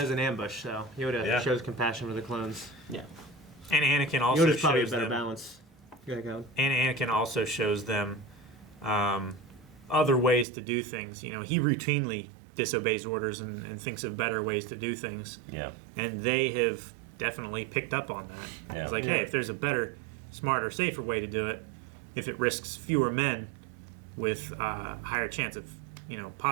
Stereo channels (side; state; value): left; drops out; at 10.5 s